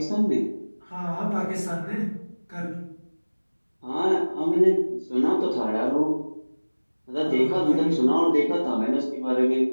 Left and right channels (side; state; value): both; inverted; correlation -1.00